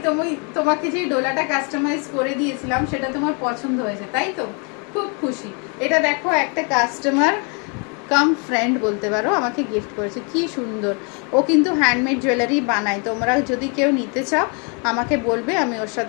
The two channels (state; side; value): quieter; right; 35.6 dB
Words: তোমাকে যে ডোলাটা কাস্টমাইজ করে দিয়েছিলাম সেটা তোমার পছন্দ হয়েছে তাই তো, খুব খুশি। এটা দেখো একটা কাস্টমার কাম ফ্রেন্ড বলতে পারো আমাকে গিফট করেছে, কি সুন্দর। ও কিন্তু হ্যান্ডমেড জুয়েলারি বানায়, তোমরা যদি কেউ নিতে চাও আমাকে বলবে, আমি ওর